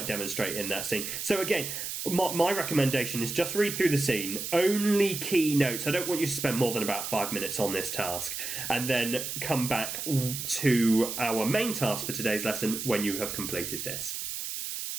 demonstrate in that scene. So again, my recommendation is just read through the scene, only key notes. I don't want you to spend more than about 5 minutes on this task, and then come back to our main task for today's lesson when you have completed this.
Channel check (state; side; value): noise; right; hiss, 5 dB below the sound